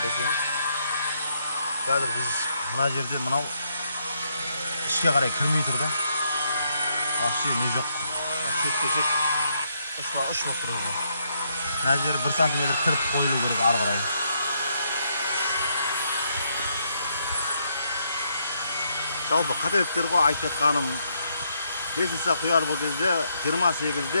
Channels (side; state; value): both; inverted; correlation -0.76